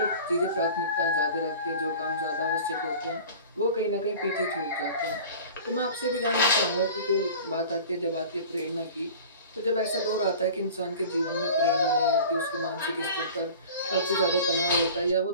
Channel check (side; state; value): both; inverted; correlation -0.40